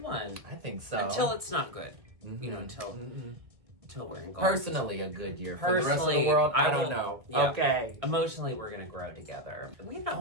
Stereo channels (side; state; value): left; late; 1.6 ms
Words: one. I think so. Until it's not good. You know, until we're in gold. Personally, a good year. For the rest of Personally, the world, I will- don't know. yeah. Okay. Emotionally, we're going to grow together. We've not